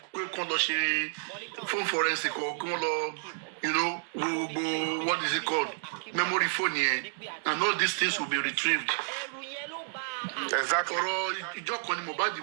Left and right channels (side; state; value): left; silent; digital silence